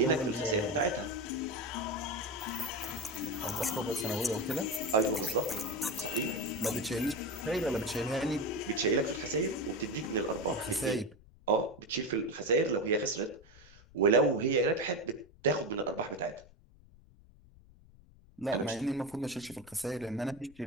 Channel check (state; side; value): noise; left; rumble, 24 dB below the sound